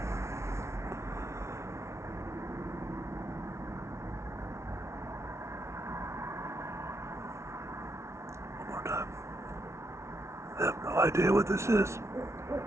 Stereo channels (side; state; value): left; late; 0.13 ms